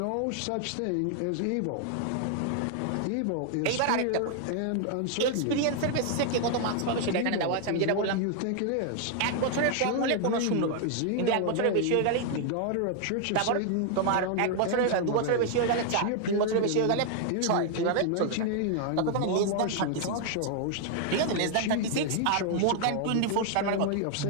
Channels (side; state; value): both; different; correlation 0.00